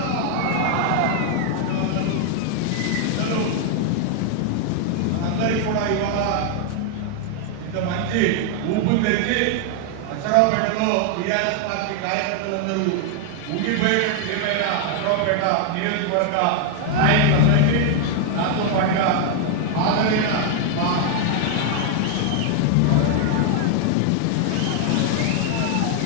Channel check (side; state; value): both; different; correlation 0.00